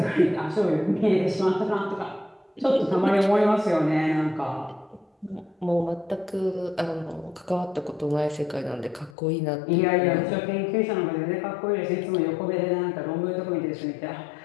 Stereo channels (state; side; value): drops out; right; at 9.1 s